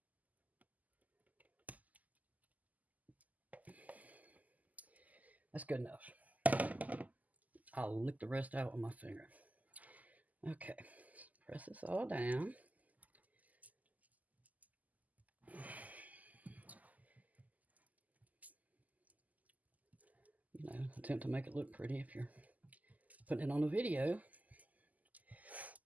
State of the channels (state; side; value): late; left; 0.078 ms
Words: That's good enough. I'll lick the rest out with my finger. Okay, press this all down. Attempt to make it look pretty if you're putting it on a video.